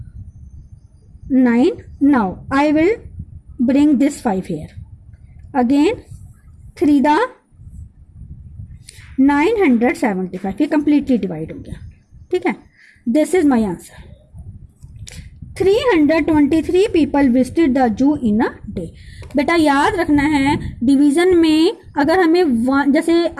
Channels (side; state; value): both; identical; correlation 1.00